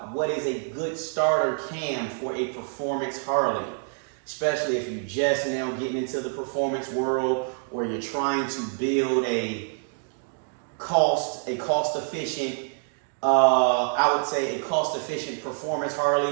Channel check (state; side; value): silent; left; 58 dB below the other